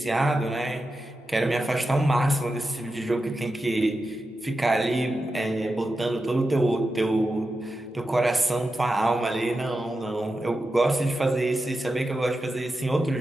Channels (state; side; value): normal; both; correlation 0.90